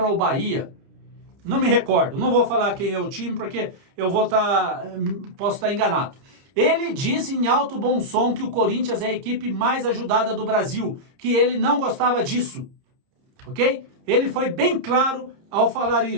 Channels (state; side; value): late; left; 30 ms